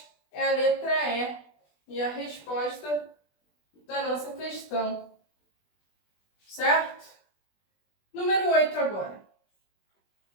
é a letra E e a resposta da nossa questão. Certo? Número 8 agora.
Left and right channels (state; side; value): late; right; 20 ms